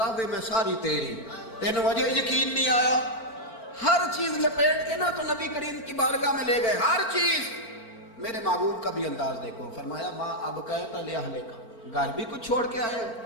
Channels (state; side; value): late; right; 4.4 ms